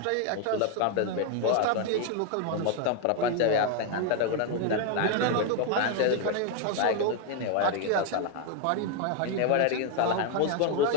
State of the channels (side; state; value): both; different; correlation 0.00